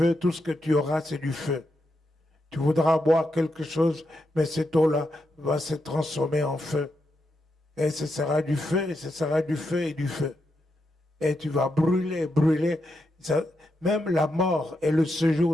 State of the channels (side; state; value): both; normal; correlation 0.84